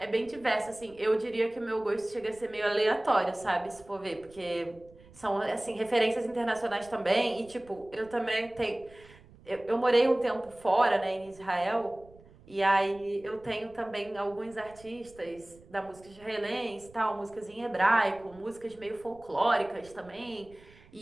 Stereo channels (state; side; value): noise; right; rumble, 24 dB below the sound